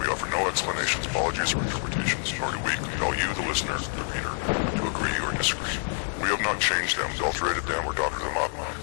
offer no explanations, apologies, or interpretations, nor do we compel you, the listener, the reader, to agree or disagree. We have not changed them, adulterated them, or doctored them up.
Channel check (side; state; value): right; silent; digital silence